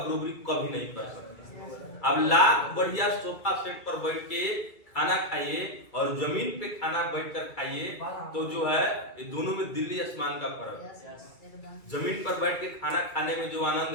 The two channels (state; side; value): late; right; 2.3 ms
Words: कभी नहीं कर सकता। अब लाख बढ़िया सोफा सेट पर बैठ के खाना खाइए और जमीन पे खाना बैठकर खाइए, तो जो है ये दोनों में दिल्ली आसमान का फर्क है। जमीन पर बैठ के खाना खाने में जो